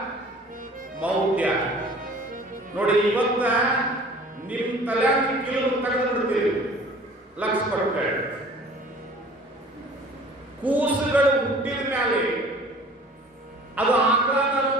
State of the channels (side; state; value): both; normal; correlation 0.48